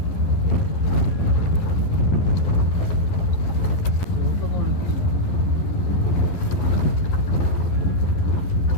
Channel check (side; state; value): right; late; 11 ms